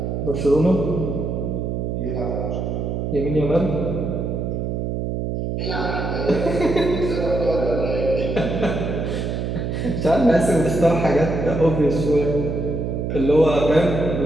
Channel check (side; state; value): right; noise; hum, 2 dB below the sound